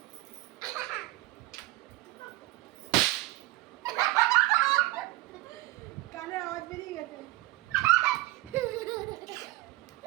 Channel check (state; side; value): quieter; left; 18.8 dB